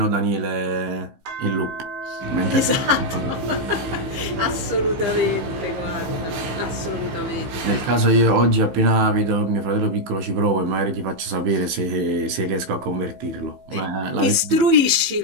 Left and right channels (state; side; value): late; left; 15 ms